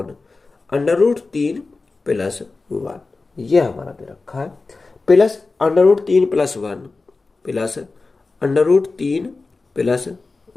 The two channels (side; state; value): right; quieter; 3.8 dB